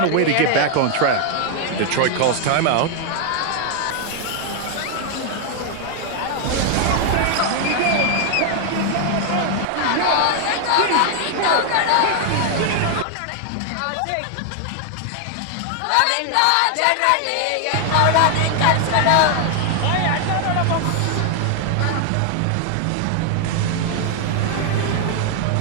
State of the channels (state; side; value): different; both; correlation 0.00